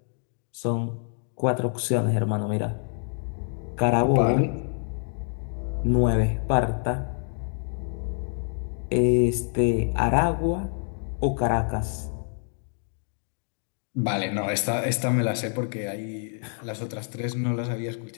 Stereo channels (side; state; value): right; silent; 56 dB below the other